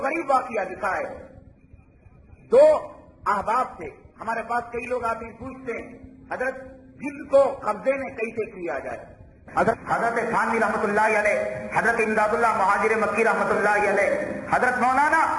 غریب واقعہ لکھا ہے. 2 احباب تھے. ہمارے پاس کئی لوگ آتے ہیں پوچھتے ہیں حضرت جن کو قبضے میں کیسے کیا جائے. حضرت تھانوی رحمت اللہ علیہ, حضرت امداد اللہ مہاجر مکی رحمت اللہ علیہ, حضرت مولانا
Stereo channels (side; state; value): both; identical; correlation 1.00